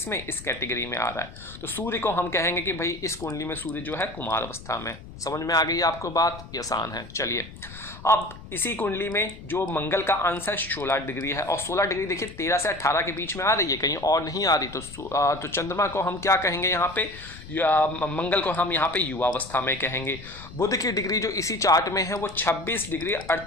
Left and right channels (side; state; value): left; noise; rumble, 16 dB below the sound